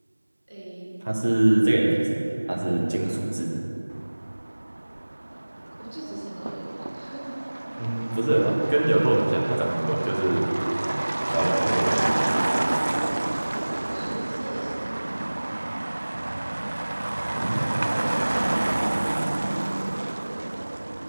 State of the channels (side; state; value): both; inverted; correlation -1.00